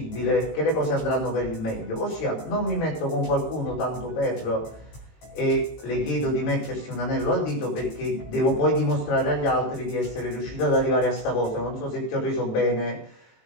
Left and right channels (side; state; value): right; late; 18 ms